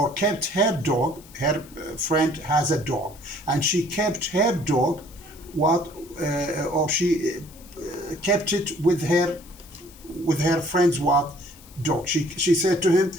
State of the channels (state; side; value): noise; left; hiss, 23 dB below the sound